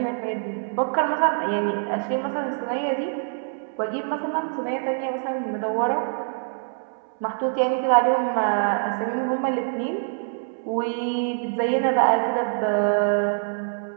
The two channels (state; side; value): silent; left; 62 dB below the other